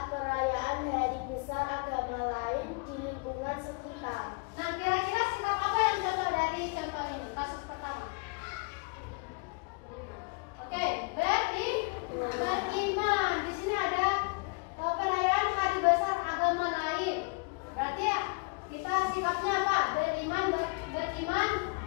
perayaan hari besar agama lain di lingkungan sekitar. Nah, kira-kira sikap apa yang contoh dari contoh ini? Kasus pertama. Oke, beriman. Di sini ada perayaan hari besar agama lain. Berarti ya, kita sikapnya apa? Beriman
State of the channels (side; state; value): right; quieter; 31.4 dB